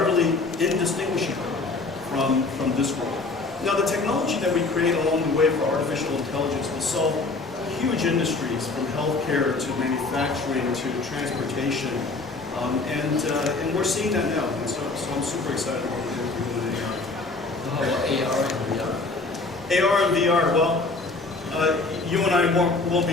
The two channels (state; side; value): quieter; right; 3.6 dB